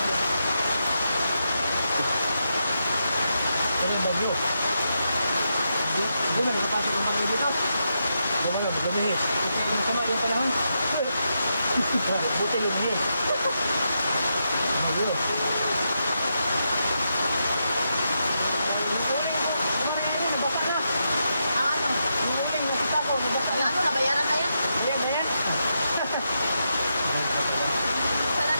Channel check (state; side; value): inverted; both; correlation -0.84